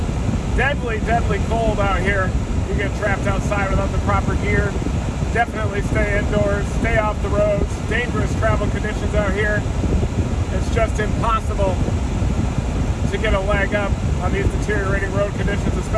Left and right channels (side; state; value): both; identical; correlation 1.00